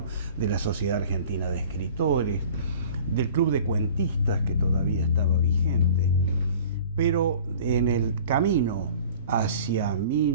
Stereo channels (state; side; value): inverted; both; correlation -0.45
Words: de la Sociedad Argentina de Escritores, del Club de Cuentistas, que todavía estaba vigente. Pero en el camino hacia